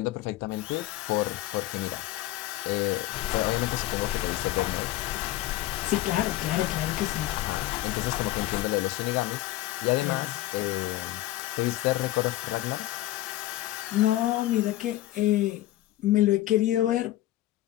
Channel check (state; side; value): quieter; right; 15.9 dB